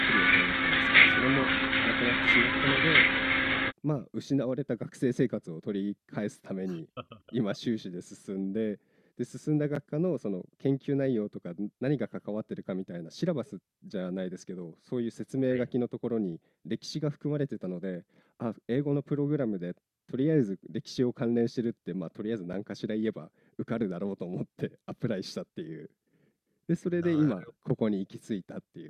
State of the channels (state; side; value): identical; both; correlation 1.00